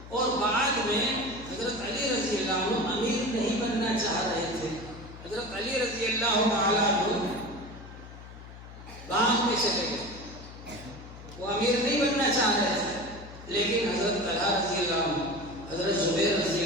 اور بعد میں حضرت علی رضی اللہ عنہ امیر نہیں بننا چاہ رہے تھے۔ حضرت علی رضی اللہ تعالیٰ عنہ باغ میں چلے گئے، وہ امیر نہیں بننا چاہ رہے تھے، لیکن حضرت طلحہ رضی اللہ عنہ، حضرت زبیر رضی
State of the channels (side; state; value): left; noise; hum, 15 dB below the sound